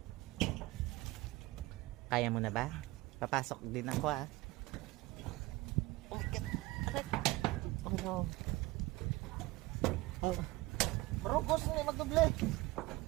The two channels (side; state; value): left; quieter; 20.4 dB